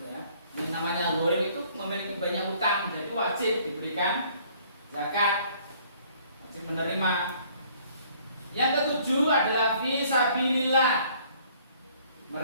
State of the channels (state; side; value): inverted; both; correlation -0.59